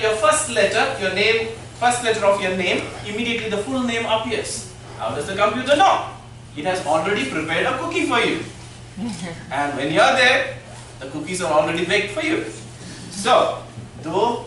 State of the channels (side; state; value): both; identical; correlation 1.00